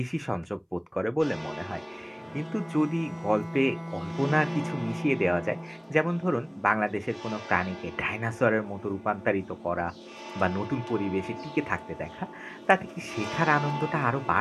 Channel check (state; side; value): identical; both; correlation 1.00